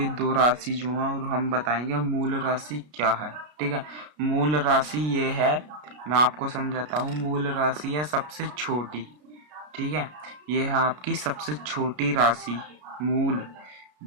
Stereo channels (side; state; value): left; late; 33 ms